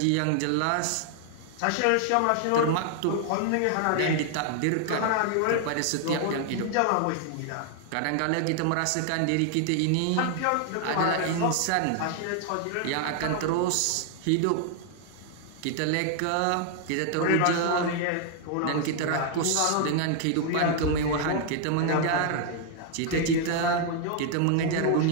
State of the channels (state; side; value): different; both; correlation 0.00